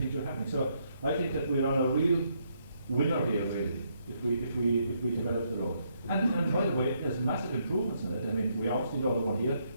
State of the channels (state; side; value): inverted; both; correlation -0.75